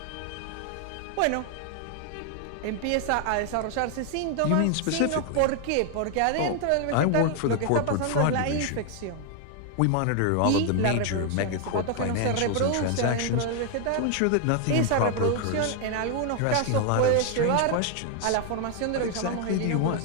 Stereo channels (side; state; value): both; different; correlation 0.00